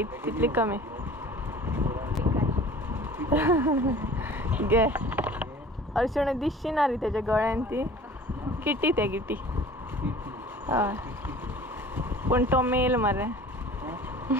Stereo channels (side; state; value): both; normal; correlation 0.45